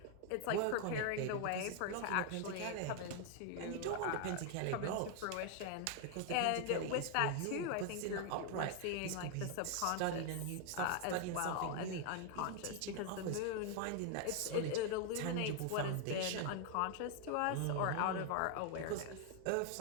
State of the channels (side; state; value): both; different; correlation 0.00